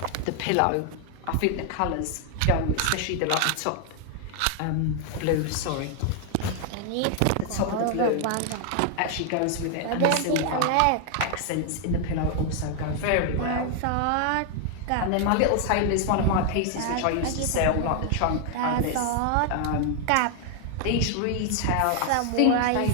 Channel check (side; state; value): both; different; correlation 0.00